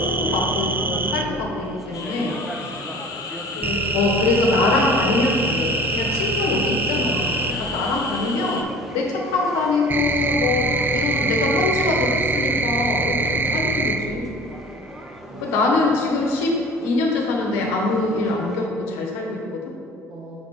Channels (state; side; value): normal; both; correlation 0.44